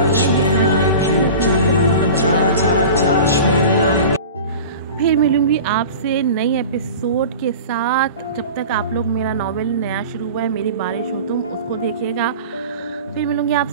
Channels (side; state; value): both; inverted; correlation -0.36